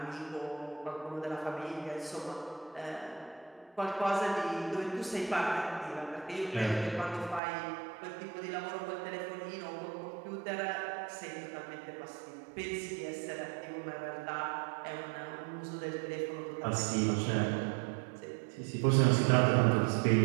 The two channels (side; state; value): left; drops out; at 7.4 s